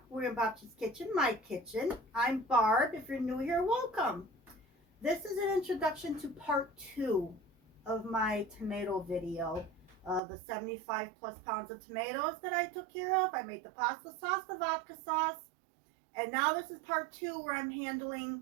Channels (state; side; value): drops out; left; at 10.2 s